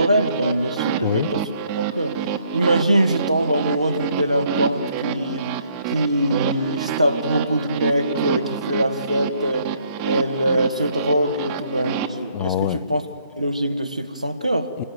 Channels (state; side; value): inverted; both; correlation -0.66